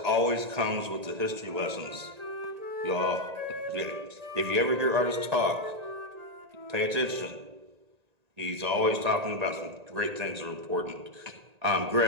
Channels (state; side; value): late; left; 1.9 ms